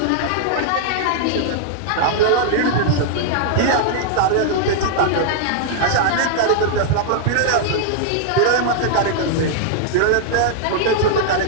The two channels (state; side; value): different; both; correlation -0.01